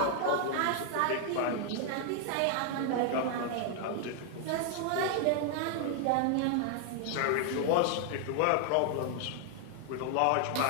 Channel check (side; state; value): both; different; correlation 0.00